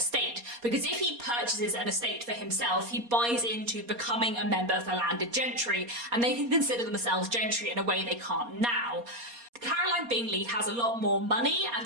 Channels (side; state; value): left; late; 4.2 ms